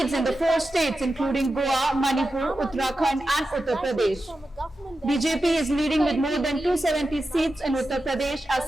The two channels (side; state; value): both; normal; correlation 0.91